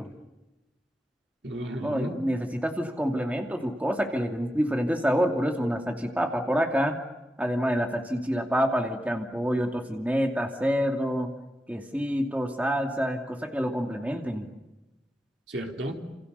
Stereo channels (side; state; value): both; normal; correlation 0.88